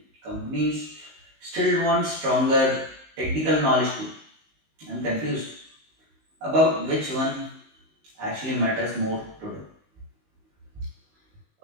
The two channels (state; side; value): late; left; 19 ms